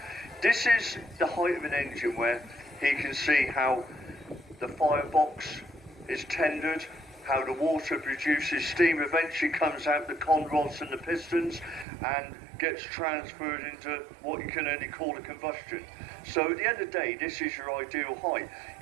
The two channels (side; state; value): left; drops out; at 11.9 s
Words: this is the height of an engine where he can see how the firebox is tendered, how the water produces steam, eventually comes out the con rods and the pistons and gets transferred into what you can only call a combustion. So at the end of the day, this is your ideal height.